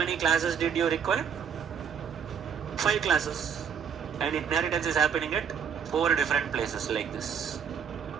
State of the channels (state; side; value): quieter; left; 7.1 dB